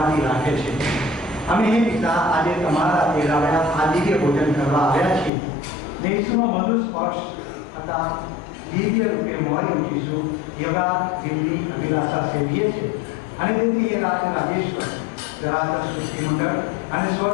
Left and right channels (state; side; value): drops out; right; at 5.3 s